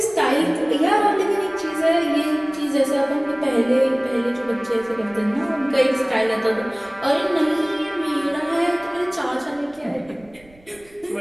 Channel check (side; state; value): right; noise; rumble, 28 dB below the sound